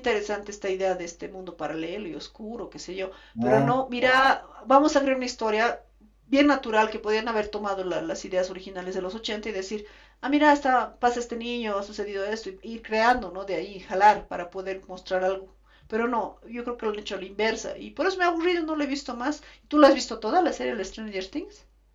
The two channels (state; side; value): identical; both; correlation 1.00